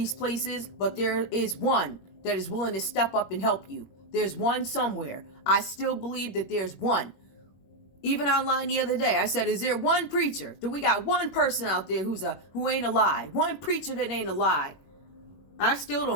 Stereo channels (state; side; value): late; right; 21 ms